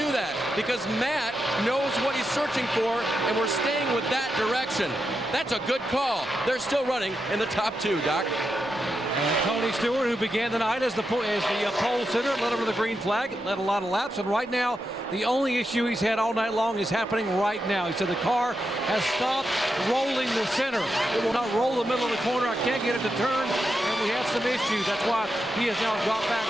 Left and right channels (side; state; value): both; normal; correlation 0.86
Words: that because Matt knows what he's searching for, and we're staying with that direction. That's a good call. They're still running in the top 2, Doc. And Tony Stewart, who began the night as the pole sitter, led over the green flag, led a lot of laps, and right now the only issue he's had all night long is happening right now. He said the car has stopped rolling the center. It will not roll the middle of the corner. I can't get it to turn, and we have some issues. That's why he has now dropped back